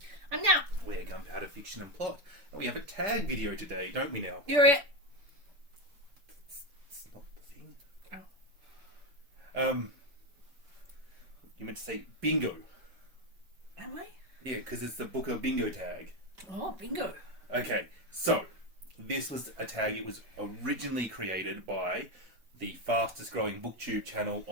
I'm now. We're Gunpowder Fiction and Plot. And we have a tag video today, don't we now? You're it. It's not the thing. Oh. You meant to say bingo. Am I? Yeah, because it's the Booker bingo tag. Oh, bingo. Okay, so this was a tag. It was originally created by the fastest growing Booktube channel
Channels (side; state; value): left; late; 5.7 ms